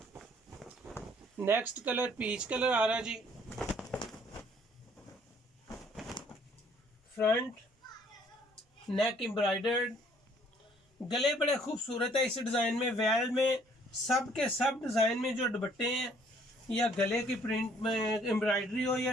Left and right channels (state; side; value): normal; both; correlation 0.61